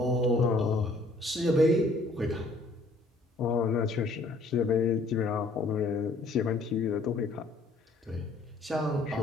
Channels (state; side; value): quieter; right; 3.0 dB